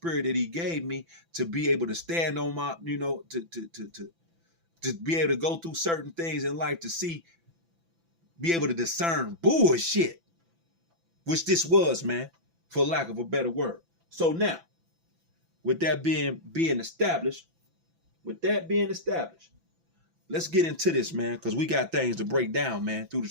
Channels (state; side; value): late; left; 6.0 ms